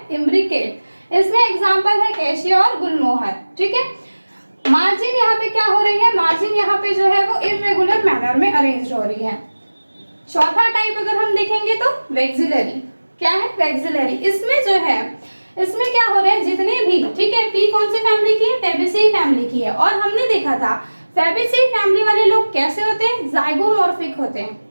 इम्ब्रिकेट। इसमें एग्जाम्पल है कैशिया और गुलमोहर, ठीक है। मार्जिन यहाँ पे क्या हो रही है? मार्जिन यहाँ पे जो है वो इर्रेगुलर मैनर में अरेंज हो रही है। चौथा टाइप अगर हम देखेंगे तो वैक्सिलरी। क्या है? वैक्सिलरी। इसमें जो है, इसमें क्या हो रहा है? जितने भी, ठीक है, पी कौन से फैमिली की है? फैबेसी फैमिली की है। और हमने देखा था फैबेसी फैमिली वाले लोग कैसे होते हैं? जाइगोमॉर्फिक होते हैं।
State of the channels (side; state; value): both; inverted; correlation -1.00